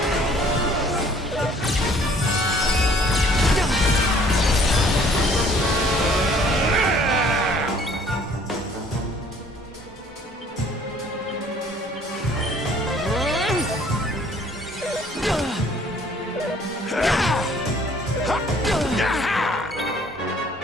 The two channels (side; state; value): both; normal; correlation 0.57